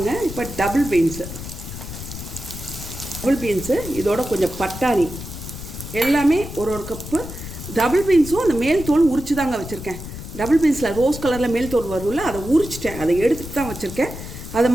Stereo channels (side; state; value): left; noise; rumble, 10 dB below the sound